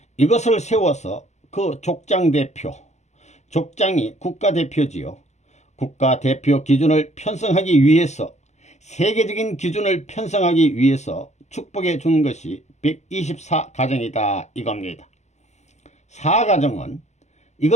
이것을 세워서 그 족장 대표, 족장이 국가대표지요. 국가대표 기준을 편성하기 위해서 세계적인 기준을 편성하기 위해서 축복해 준 것이 124가정이다 이겁니다. 4가정은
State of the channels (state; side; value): late; right; 0.33 ms